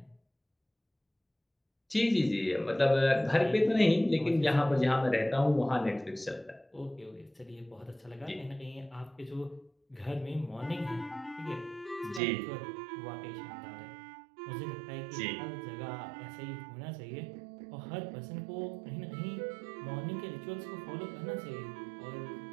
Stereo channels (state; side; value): drops out; left; at 12.2 s